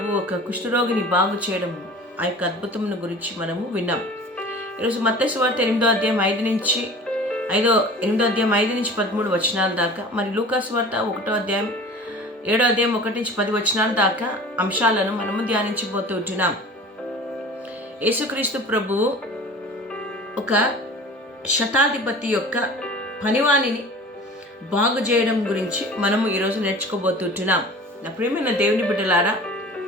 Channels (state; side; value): normal; both; correlation 0.41